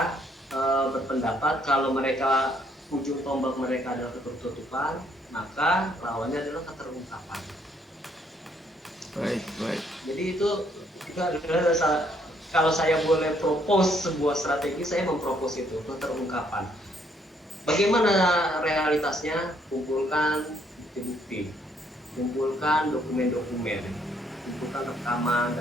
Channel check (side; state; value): both; normal; correlation 0.68